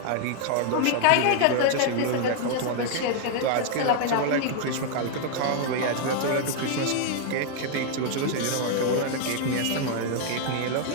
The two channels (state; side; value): different; both; correlation 0.00